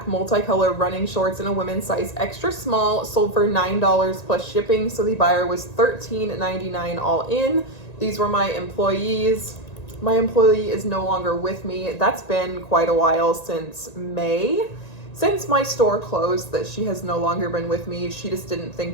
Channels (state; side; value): late; right; 1.9 ms